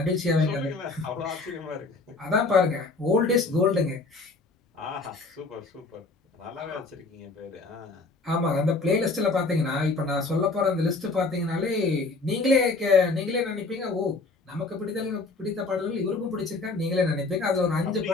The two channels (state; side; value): quieter; right; 3.6 dB